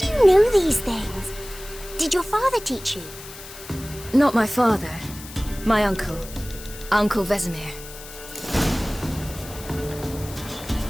you know these things? Did your father teach you? Not my father. My uncle. Uncle Vesemir.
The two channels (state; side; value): noise; left; hiss, 15 dB below the sound